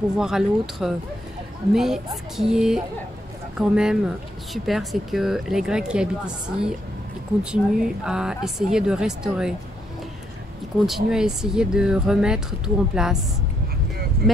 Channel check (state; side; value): normal; both; correlation 0.75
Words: à l'autre. Mais ce qui est quand même super, c'est que les Grecs qui habitent ici, ils continuent à essayer de restaurer. Ils continuent à essayer de remettre tout en place.